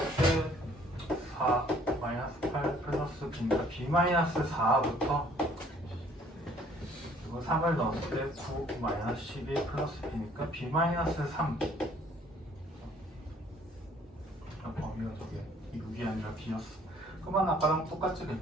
때 4 마이너스 8 플러스 B니까 B 마이너스 4부터 그리고 3을 넣었을 때 9 마이너스 12 플러스 B니까 B 마이너스 3 범위가 저게 6이 아니라 B였어. 그러면 아까랑 똑같지.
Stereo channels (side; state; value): both; normal; correlation 0.58